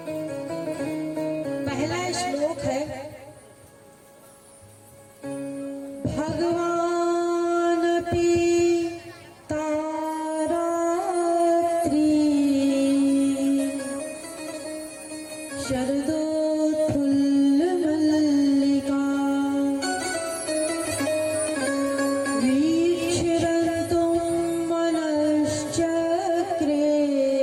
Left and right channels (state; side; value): identical; both; correlation 1.00